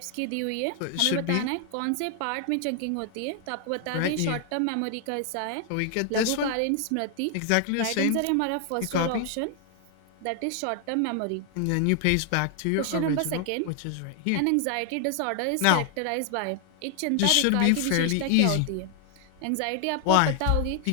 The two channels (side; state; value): both; different; correlation 0.00